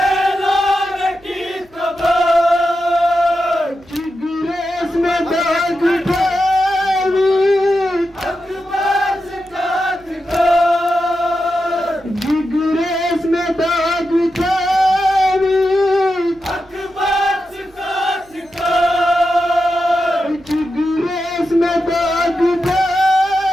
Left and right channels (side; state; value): right; noise; hum, 28 dB below the sound